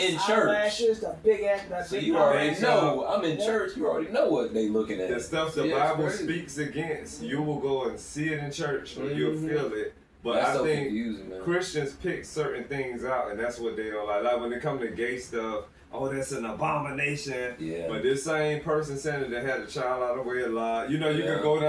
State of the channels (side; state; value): both; identical; correlation 1.00